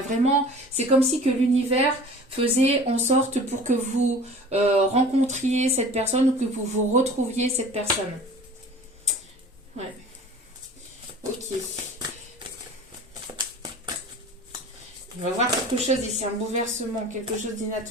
vraiment, c'est comme si que l'univers faisait en sorte pour que vous rencontriez cette personne ou que vous retrouviez cette personne. Ouais. Ok. On va voir quelque chose ici, un bouleversement, quelque chose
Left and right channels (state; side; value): normal; both; correlation 0.43